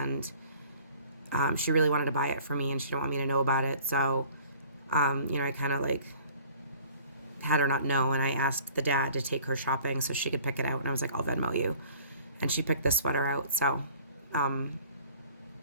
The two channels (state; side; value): inverted; both; correlation -0.51